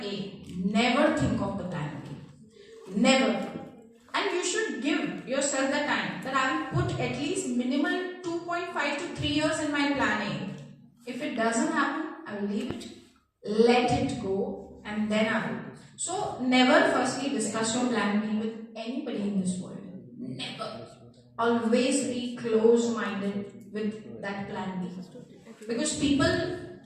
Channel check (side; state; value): both; identical; correlation 1.00